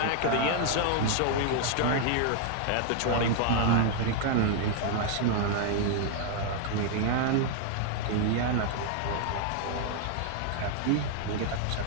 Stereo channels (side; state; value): both; different; correlation 0.00